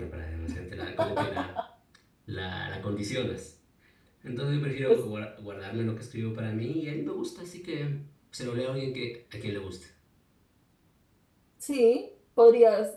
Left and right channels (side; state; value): both; identical; correlation 1.00